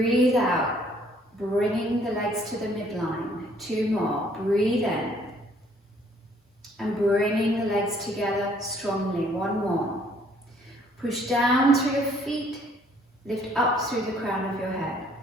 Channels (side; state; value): both; normal; correlation 0.62